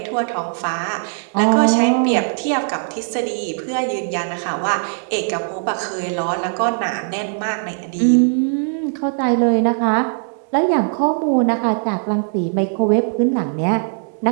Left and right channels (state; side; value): silent; left; digital silence